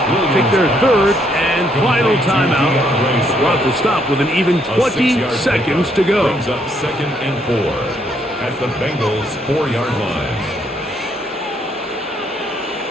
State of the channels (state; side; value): normal; both; correlation 0.71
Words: take their 3rd and final timeout. Brought to stop with an even 20 seconds to go. Brings up 2nd and 4 at the Bengals' 4-yard line.